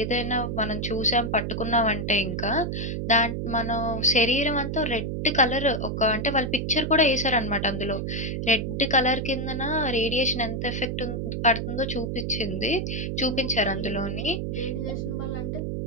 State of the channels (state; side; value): noise; right; hum, 2 dB below the sound